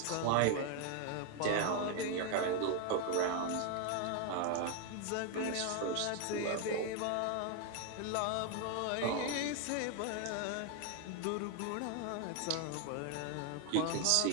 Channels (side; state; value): both; different; correlation 0.01